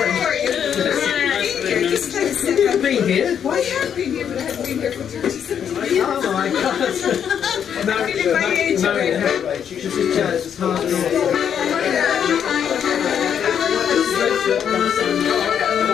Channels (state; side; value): quieter; right; 8.4 dB